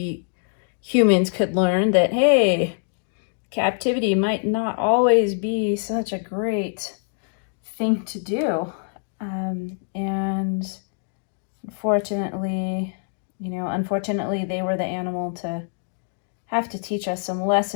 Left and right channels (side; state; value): right; silent; digital silence